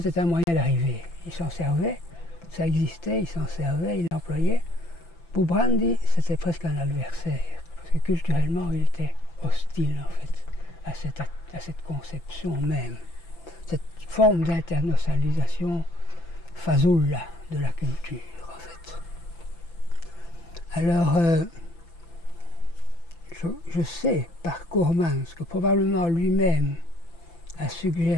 un moyen d'arriver. Il s'en servait, ça existait, il s'en servait, il l'employait. Pour Brandi, c'était presque un adversaire, parce que culturellement, il était hostile en fait à cette conception même, cette forme d'internationalisation fazoula de la culture, en fait. Alors, je sais par Coremans que probablement lui-même a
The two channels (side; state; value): right; late; 5.9 ms